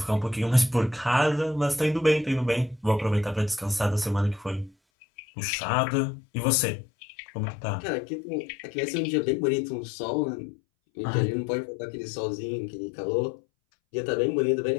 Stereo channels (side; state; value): right; drops out; at 4.8 s